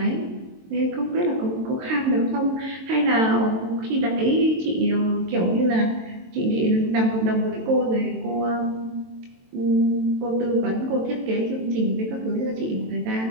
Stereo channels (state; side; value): late; left; 22 ms